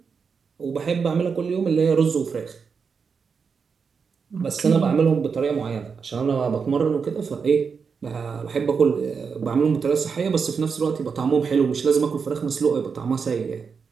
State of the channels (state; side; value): quieter; left; 5.7 dB